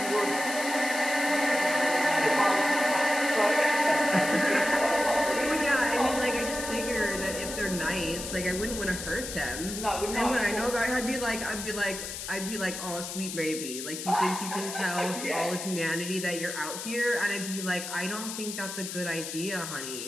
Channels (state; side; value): noise; left; hiss, 7 dB below the sound